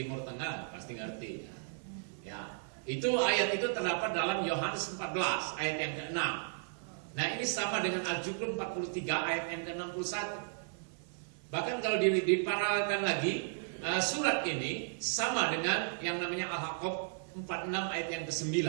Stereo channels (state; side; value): silent; left; 55 dB below the other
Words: tengah pasti ngerti. Ya. Itu ayat itu terdapat dalam Yohanes 14 ayat yang ke-6. Nah, ini sama dengan Al-Jum'ah 43 ayat yang ke-61. Bahkan kalau diparalelkan lagi, surat ini sama dengan yang namanya Al-Haqqab 46 ayat yang ke-9.